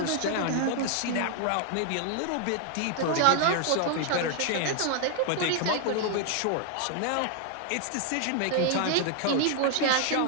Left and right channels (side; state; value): both; different; correlation 0.00